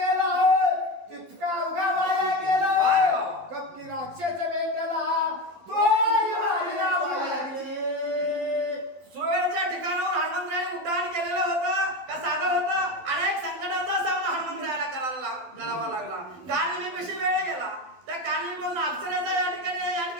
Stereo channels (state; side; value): late; left; 12 ms